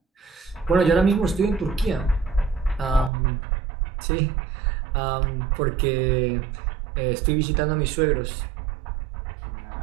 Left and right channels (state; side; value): drops out; left; at 3.1 s